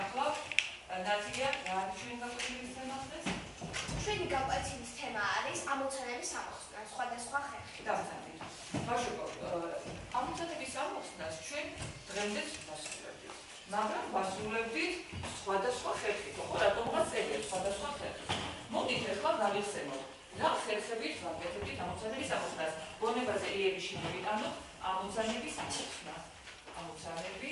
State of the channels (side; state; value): both; identical; correlation 1.00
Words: ნაცია რა არის ჩვენი გაკვეთილის თემა დღეს? ჩვენი გაკვეთილის თემა არის ამოცანების ამოხსნა სხვადასხვა ხერხით. დავწერთ. ბავშვებო, ამოცანების ამოხსნას ჩვენ დღემდე ვასრულებთ. მაგრამ ვასრულებთ სხვადასხვა ხერხით, ხო, რატომღაც წერია სხვადასხვა ხერხით. მოდით ახლა გავიხსენოთ. რა ხერხებით ვაკეთებთ ამოცანების ამოხსნას? გონებაზე იერიში მოვიტანოთ ამოცანების ამოხსნა.